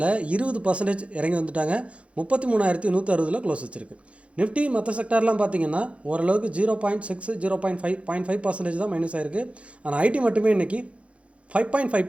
20% இறங்கி வந்துட்டாங்க. 33,160 க்ளோஸ் வச்சுருக்கு. நிஃப்டி மற்ற செக்டார்லாம் பார்த்திங்கன்னா ஓரளவுக்கு 0.6 0.5% தான் மைனஸ் ஆகிருக்கு. ஆனால் ஐடி மட்டுமே இன்றைக்கி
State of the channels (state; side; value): late; left; 0.062 ms